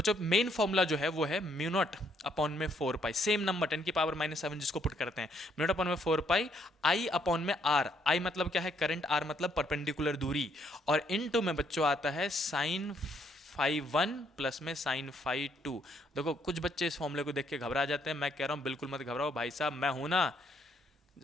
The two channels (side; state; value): both; normal; correlation 0.70